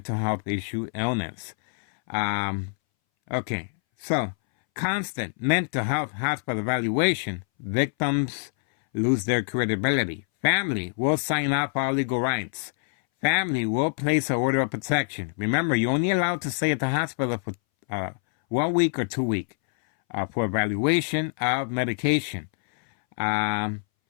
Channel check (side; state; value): right; silent; 61 dB below the other